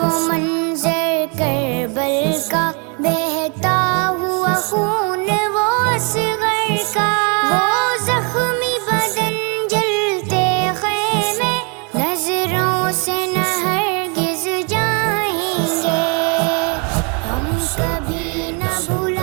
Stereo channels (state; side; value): quieter; left; 35.5 dB